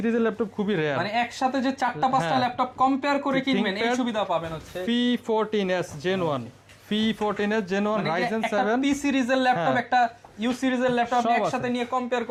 ল্যাপটপ খুবই রেয়ার। মানে একসাথে যে 4-5টা ল্যাপটপ কম্পেয়ার করে কিনবেন এই সুবিধা পাবেন হচ্ছে P14s Gen 1, P14s Gen 1 Ryzen 7 P সিরিজের ল্যাপটপ, একটা ইউ সিরিজের ল্যাপটপ একসাথে নিয়ে কম্পেয়ার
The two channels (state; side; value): identical; both; correlation 1.00